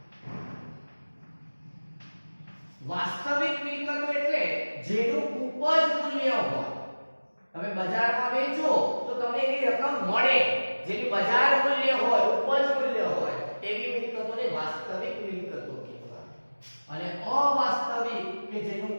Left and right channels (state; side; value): inverted; both; correlation -1.00